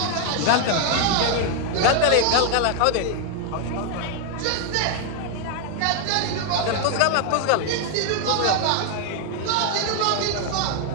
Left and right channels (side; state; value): both; different; correlation 0.00